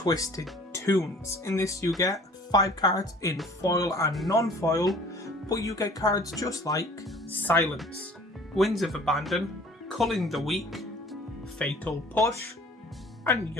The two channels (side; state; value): both; normal; correlation 0.50